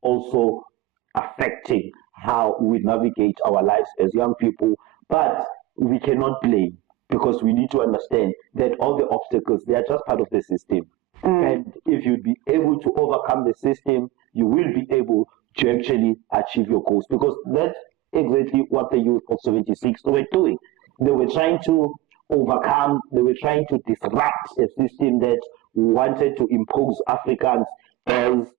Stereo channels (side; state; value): left; quieter; 17.3 dB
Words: affecting how we navigate our lives as young people, but we cannot blame, because we need to understand that all the obstacles, they are just part of the system. And if you'd be able to overcome the system, you will be able to actually achieve your goals, because that's exactly what the youth of 76 were doing. They were trying to overcome, they were trying to disrupt a system that wanted to impose Africans as,